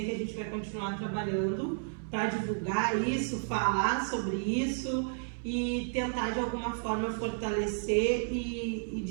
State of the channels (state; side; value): silent; left; 56 dB below the other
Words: que a gente vai continuar trabalhando para divulgar isso, falar sobre isso e tentar de alguma forma fortalecer e